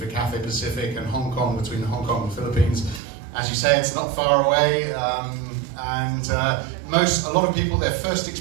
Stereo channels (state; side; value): drops out; left; at 3.0 s